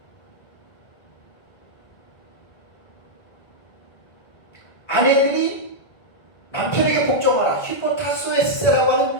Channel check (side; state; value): right; late; 1.8 ms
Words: 아내들이 남편에게 복종하라. 히포타소에스라고